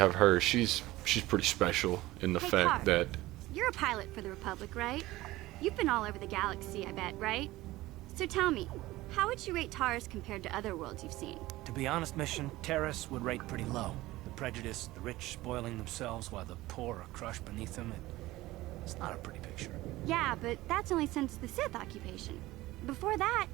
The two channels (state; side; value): quieter; left; 18.0 dB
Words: her, she's pretty special in the Hey, fact Tar. that You're a pilot for the Republic, right? You've been all over the galaxy, I bet, right? So tell me, how would you rate Taurus compared to other worlds you've seen? To be honest, Mission, Terrace would rate pretty low. The prejudice, the rich spoiling themselves while the poor are crushed beneath them, it's not a pretty picture. Yeah, but that's only since the Sith occupation. Before that,